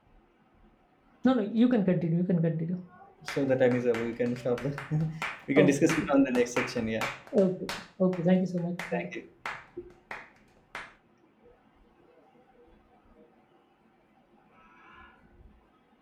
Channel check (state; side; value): identical; both; correlation 1.00